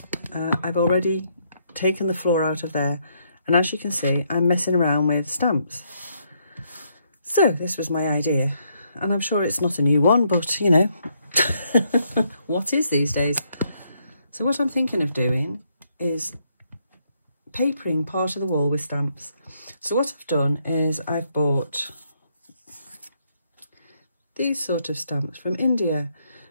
I've already taken the floor out of there, and as you can see, I'm messing around with stamps. So this was my idea, and I'm sure it's not a new one, but you know, what is these days? So what I'm thinking of doing is papering part of the wall with stamps. So what I've done is I've bought these sort of stamps from India,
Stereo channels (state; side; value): inverted; both; correlation -0.74